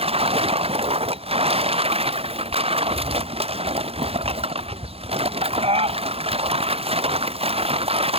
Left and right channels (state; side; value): late; left; 0.28 ms